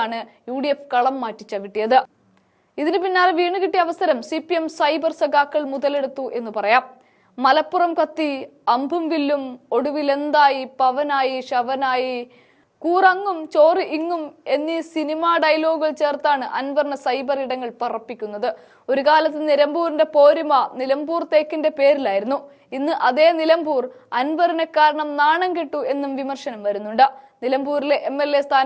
UDF കളം മാറ്റി ചവിട്ടിയത്. ഇതിന് പിന്നാലെ വീണ് കിട്ടിയ അവസരം CPM സൈബർ സഖാക്കൾ മുതലെടുത്തു എന്ന് പറയാം. മലപ്പുറം കത്തി, അമ്പും വില്ലും, ഒടുവിലെന്തായി, പവനായി, ശവനായി, കൂറങ്ങും ചോറ് ഇങ്ങും എന്നീ സിനിമാ ഡയലോഗുകൾ ചേർത്താണ് അൻവറിന് സൈബർ ഇടങ്ങൾ പറപ്പിക്കുന്നത്. ഒരു കാലത്ത് നിലമ്പൂരിന്റെ പോരിമ നിലമ്പൂർ തേക്കിന്റെ പേരിലായിരുന്നു. ഇന്ന് അതേ നിലമ്പൂർ അൻവറിനെ കാരണം നാണം കെട്ടു എന്നും വിമർശനം വരുന്നുണ്ട്. നിലമ്പൂരിലെ MLA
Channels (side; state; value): both; identical; correlation 1.00